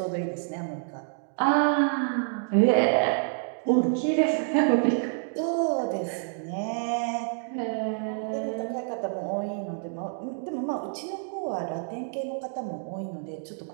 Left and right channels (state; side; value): silent; left; 59 dB below the other